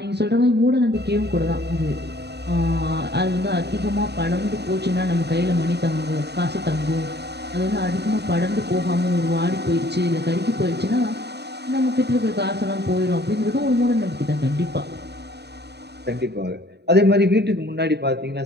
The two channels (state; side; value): late; left; 0.49 ms